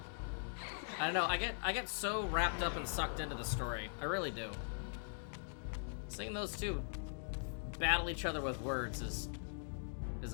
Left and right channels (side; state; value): right; silent; digital silence